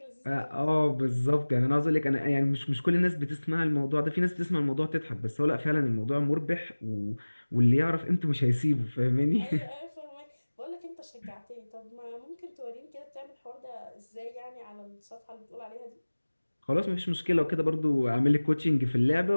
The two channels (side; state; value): both; inverted; correlation -1.00